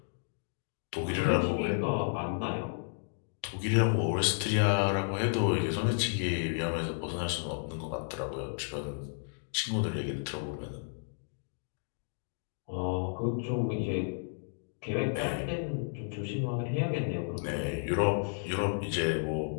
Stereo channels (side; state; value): right; silent; digital silence